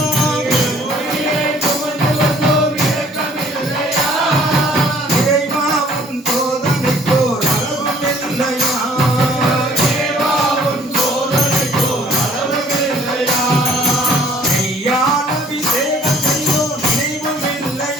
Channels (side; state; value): both; normal; correlation 0.57